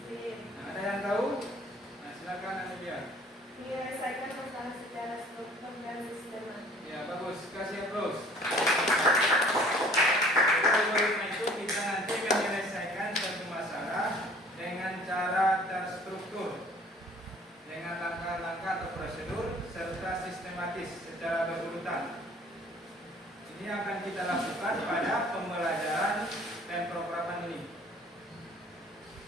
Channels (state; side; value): normal; both; correlation 0.53